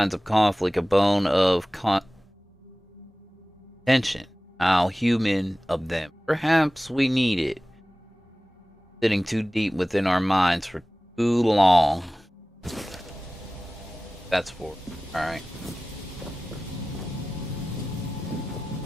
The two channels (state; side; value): normal; both; correlation 0.97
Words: of conflict, a bone of tension. How human of them. Perhaps we need it. Sitting too deep within our minds for too long. That's for alright.